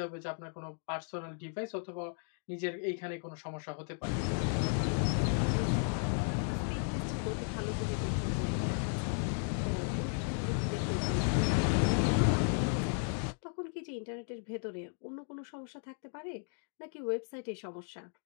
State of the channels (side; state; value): right; silent; 54 dB below the other